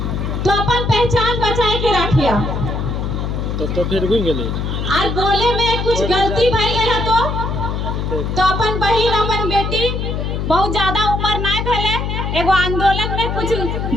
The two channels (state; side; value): noise; left; hum, 2 dB below the sound